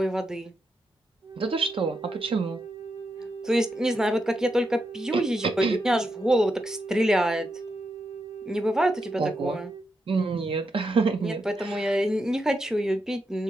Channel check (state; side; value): normal; both; correlation 0.84